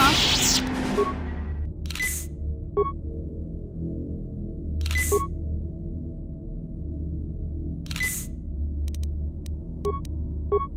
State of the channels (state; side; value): identical; both; correlation 1.00